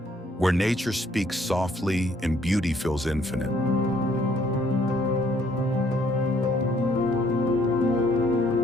where nature speaks softly and beauty feels infinite.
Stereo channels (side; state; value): both; normal; correlation 0.65